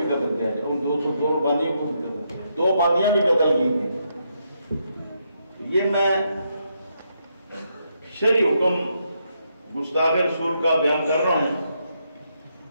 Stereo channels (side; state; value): both; inverted; correlation -0.79